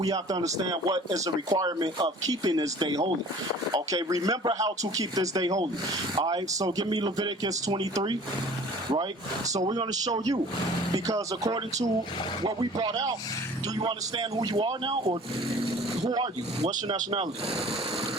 have to understand what is the requirement of keeping this day holy. Okay, remember how to keep this day holy. All right, so give me Leviticus 23, right? So we're going to show you, because according to what we brought out, do you understand who you are now, or who are you? What's your nationality?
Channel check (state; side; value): normal; both; correlation 0.47